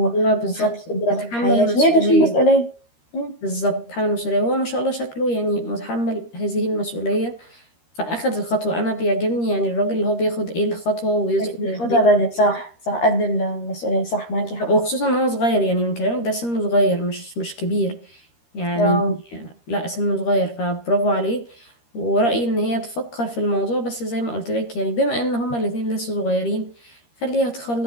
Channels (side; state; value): right; late; 13 ms